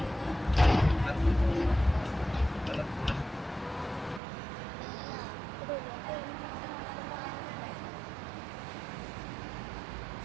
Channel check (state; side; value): drops out; left; at 4.2 s